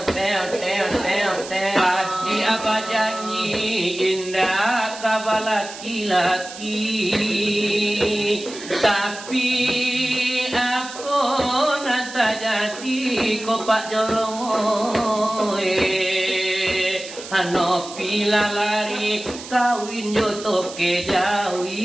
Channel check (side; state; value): right; noise; hiss, 13 dB below the sound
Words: Hati apa janji indah kabar laki-laki. Tapi aku nanti jadi kopak jorong. Ano pila lari kawin joto ke